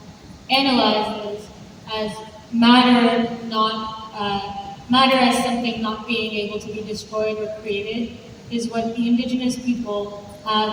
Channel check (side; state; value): both; identical; correlation 1.00